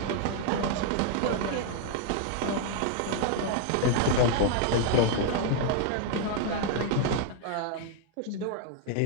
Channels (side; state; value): both; different; correlation 0.00